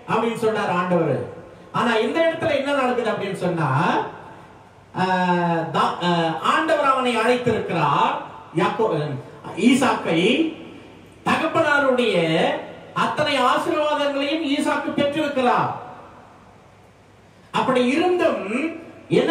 அப்படின்னு சொன்னார் ஆண்டவர். ஆனா இந்த இடத்துல என்ன நடக்குது அப்படின்னு சொன்னா, ஆண்டவர் அவனை அழைத்திருக்கிறார். ஈசாக்கை தகப்பனாருடைய அத்தனை ஆசீர்வாதங்களையும் ஈசாக்கு பெற்றிருக்கிறார். அப்படி இருந்தும் என்ன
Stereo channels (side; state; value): both; identical; correlation 1.00